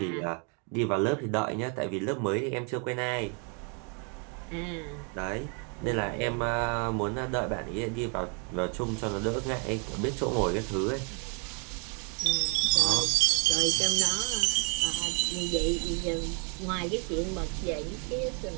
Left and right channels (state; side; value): quieter; left; 38.3 dB